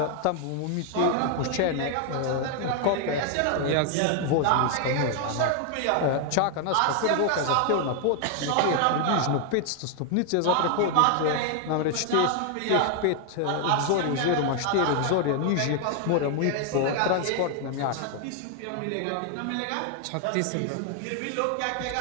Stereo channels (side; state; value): both; different; correlation 0.00